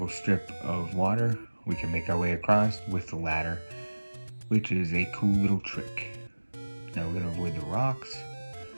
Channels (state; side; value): inverted; both; correlation -1.00